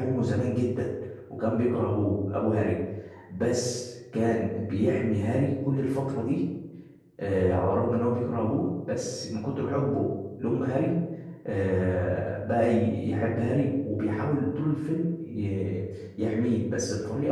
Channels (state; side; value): identical; both; correlation 1.00